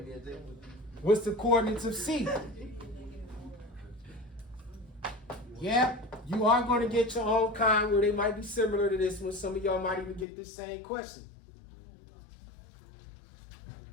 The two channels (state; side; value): drops out; right; at 10.2 s